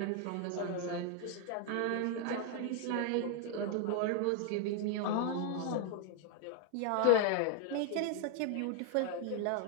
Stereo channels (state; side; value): different; both; correlation 0.00